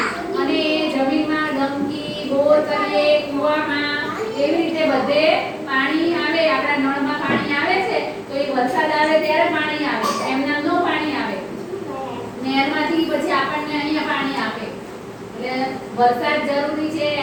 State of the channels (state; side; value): identical; both; correlation 1.00